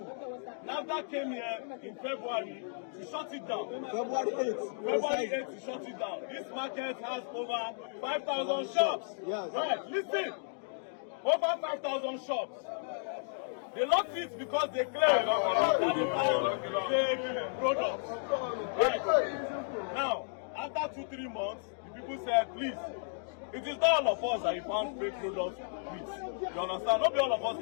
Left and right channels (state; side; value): silent; right; digital silence